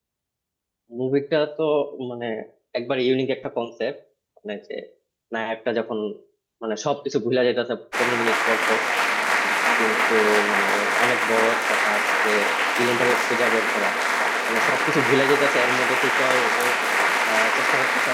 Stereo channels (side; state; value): both; identical; correlation 1.00